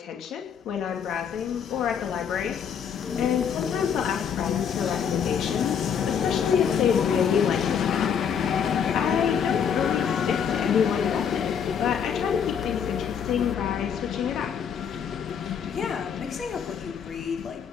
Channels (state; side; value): quieter; right; 7.6 dB